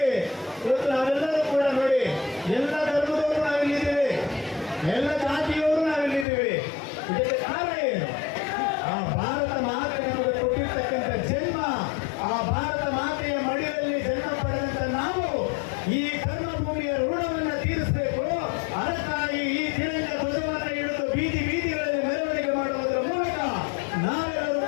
ಇವತ್ತು ನಾವೆಲ್ಲರೂ ಕೂಡ ನೋಡಿ, ಎಲ್ಲ ಧರ್ಮದವರು ನಾವಿಲ್ಲಿದ್ದೀವಿ, ಎಲ್ಲ ಜಾತಿಯವರು ನಾವಿಲ್ಲಿದ್ದೀವಿ. ಇದಕ್ಕೆ ಕಾರಣ ಏನು? ಆ ಭಾರತ ಮಾತೆ ನಮಗೆ ಕೊಟ್ಟಿರ್ತಕ್ಕಂಥ ಜನ್ಮ, ಆ ಭಾರತ ಮಾತೆಯ ಮಡಿಯಲ್ಲಿ ಜನ್ಮ ಪಡೆದಂತ ನಾವು ಈ ಕರ್ಮಭೂಮಿಯ ಋಣವನ್ನು ತೀರಿಸಬೇಕು. ಅದಕ್ಕಾಗಿ ಈ ತಿರಂಗ ಧ್ವಜವನ್ನು ಹಿಡಿದು ಬೀದಿಗಳಲ್ಲಿ ಮೆರವಣಿಗೆ ಮಾಡುವುದರ ಮೂಲಕ ನಾವೆಲ್ಲರೂ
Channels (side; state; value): right; drops out; at 6.2 s